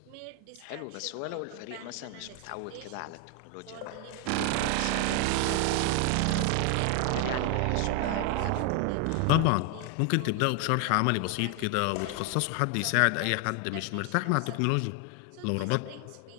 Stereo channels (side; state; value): both; different; correlation 0.01